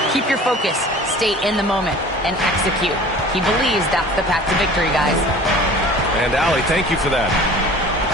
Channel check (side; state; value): both; normal; correlation 0.44